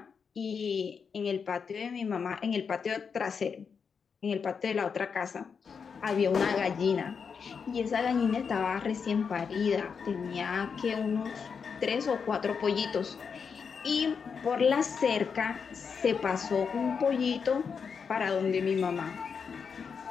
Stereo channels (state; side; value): quieter; right; 6.1 dB